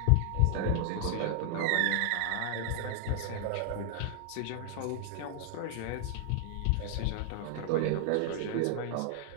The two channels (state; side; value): different; both; correlation 0.00